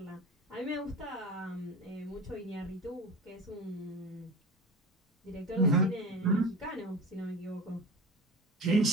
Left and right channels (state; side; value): normal; both; correlation 0.31